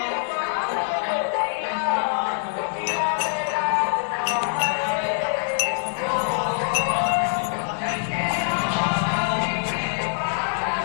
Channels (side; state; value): right; silent; digital silence